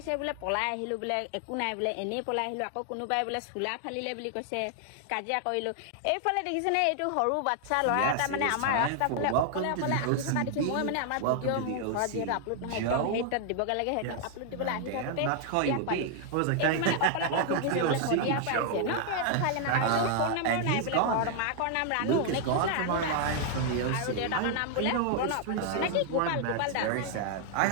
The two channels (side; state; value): both; different; correlation 0.00